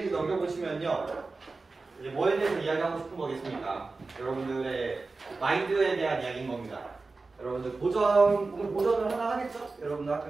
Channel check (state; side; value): quieter; left; 3.8 dB